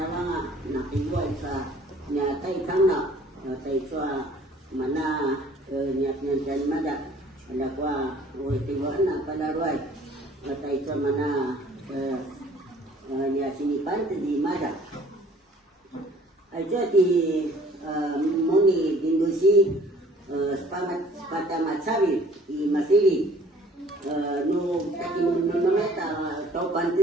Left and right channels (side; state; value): both; normal; correlation 0.54